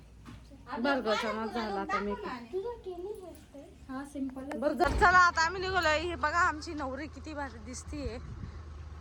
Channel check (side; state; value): both; identical; correlation 1.00